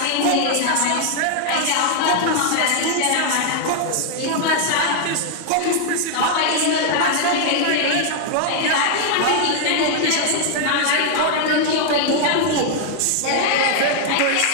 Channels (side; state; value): both; different; correlation 0.00